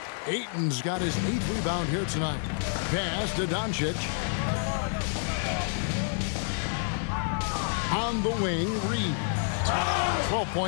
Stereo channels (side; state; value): right; silent; 59 dB below the other